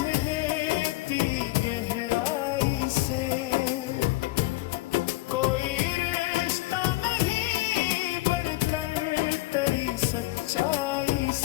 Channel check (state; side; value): quieter; right; 19.2 dB